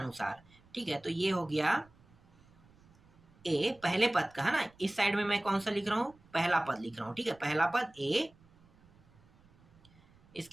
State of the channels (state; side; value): noise; right; rumble, 28 dB below the sound